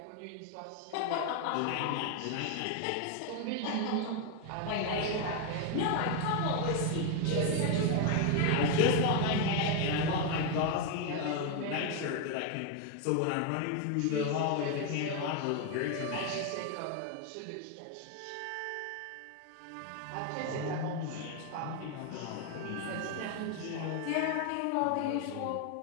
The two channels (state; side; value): different; both; correlation 0.01